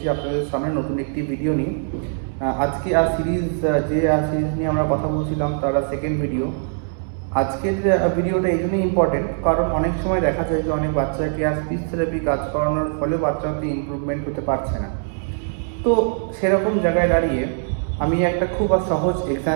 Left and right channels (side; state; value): left; silent; digital silence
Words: আপনাদের সামনে নতুন একটি ভিডিও নিয়ে। আজকে সিরিজ নিয়ে আমরা কথা বলছিলাম, তার সেকেন্ড ভিডিও। আজকের ভিডিওটা এই জন্যই ইম্পর্টেন্ট কারণ অনেক সময় দেখা যায় যে অনেক বাচ্চাকে স্পিচ থেরাপি কাজ করানোর ফলে বাচ্চাতে ইমপ্রুভমেন্ট হতে পারছে না। তো সেরকম জায়গায় দাঁড়িয়ে আমি একটা খুব সহজ